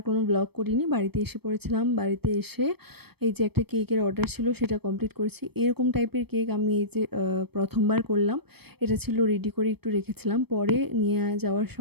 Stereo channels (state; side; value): late; left; 0.97 ms